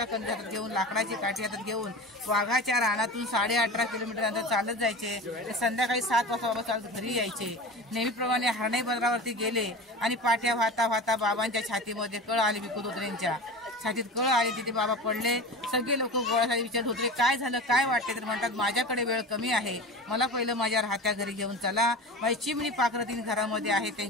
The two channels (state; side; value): normal; both; correlation 0.31